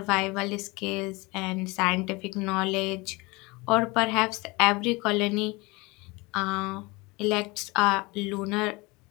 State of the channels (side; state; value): right; quieter; 24.9 dB